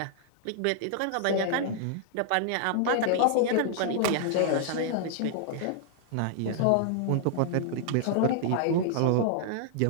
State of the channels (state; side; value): different; both; correlation -0.01